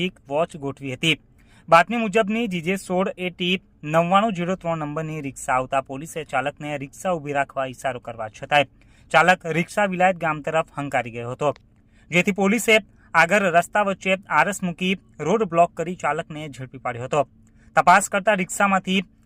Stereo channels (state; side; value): identical; both; correlation 1.00